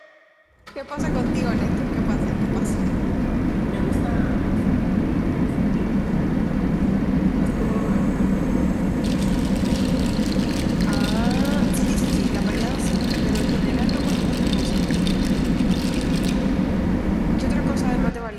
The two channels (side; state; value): both; identical; correlation 1.00